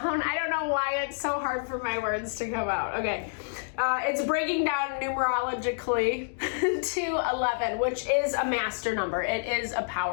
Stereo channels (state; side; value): silent; right; digital silence